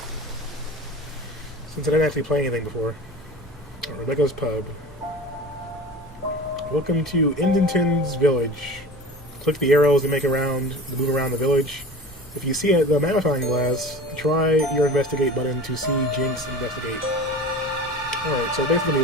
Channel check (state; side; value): normal; both; correlation 0.36